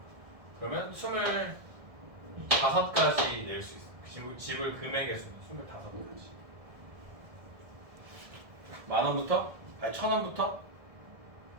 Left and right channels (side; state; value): left; late; 1.7 ms